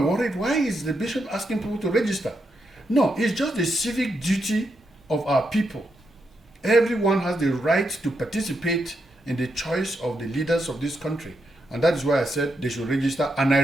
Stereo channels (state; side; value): normal; both; correlation 0.82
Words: Why is the bishop asking people to register? No, it's just the civic duty of our people. Everyone has the right to participate in the choice of the leaders of this country, and that is why I said they should register. And I